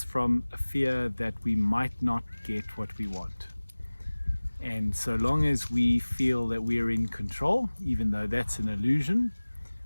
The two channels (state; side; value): inverted; both; correlation -1.00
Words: from a fear that we might not get what we want. And so long as we feel that we're in control, even though that's an illusion,